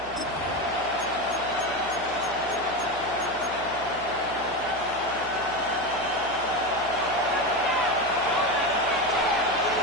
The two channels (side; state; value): right; noise; hum, 17 dB below the sound